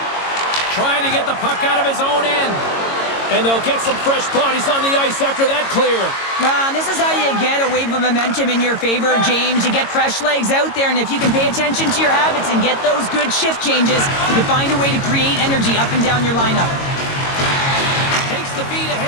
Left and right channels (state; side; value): late; right; 22 ms